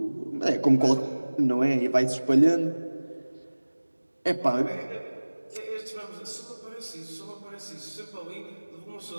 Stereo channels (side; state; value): both; inverted; correlation -1.00